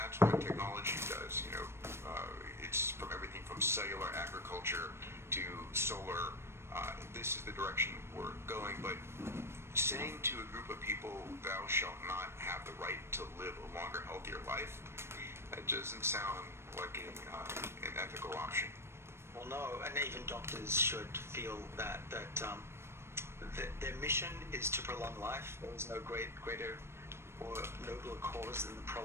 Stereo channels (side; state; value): left; late; 0.12 ms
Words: what technology does. It's from everything from cellular agriculture to solar. This is the direction we're going. But saying to a group of people, "Thou shalt not have the right to live a longer, healthier life," that doesn't sound like an ethical option. Well, no, and even doctors should feel that their mission is to prolong life. There is no greater or nobler cause than the